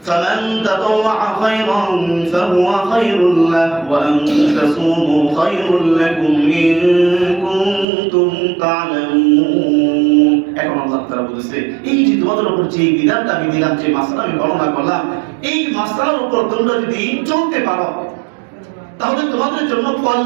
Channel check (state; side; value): drops out; left; at 7.9 s